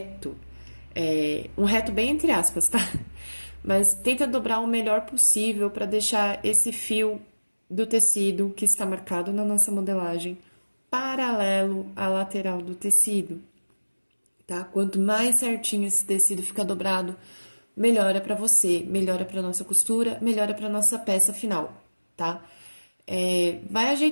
Um reto bem entre aspas, tá? Mas tenta dobrar o melhor possível pra deixar esse fio do tecido que está marcado na nossa modelagem paralelo à lateral do tecido, tá? Quanto mais certinho esse tecido fica dobrado, melhora pra você, melhora pra nossa costura, melhora pra nossa peça final, tá? Vai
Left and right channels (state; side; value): inverted; both; correlation -1.00